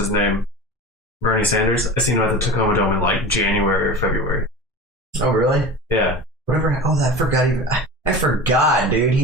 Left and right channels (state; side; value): normal; both; correlation 0.32